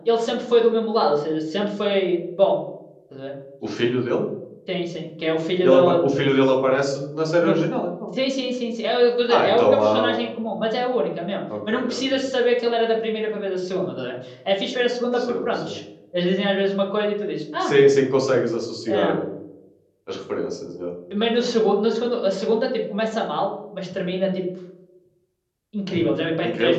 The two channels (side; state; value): both; identical; correlation 1.00